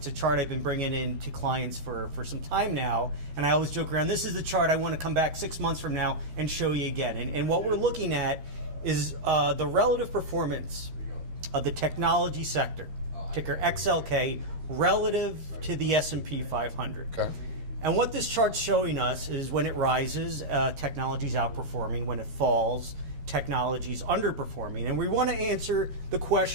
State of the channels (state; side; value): late; left; 13 ms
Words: a chart I've been bringing in to clients for some time now, and I always joke around, this is the chart I want to come back 6 months from now and show you again. And what we're looking at is the relative performance of the technology sector, ticker XLK, relative to the S&P 500. Okay. And what this chart's showing us is when it rises, technology's outperforming. When it falls, technology's underperforming. And we want to answer the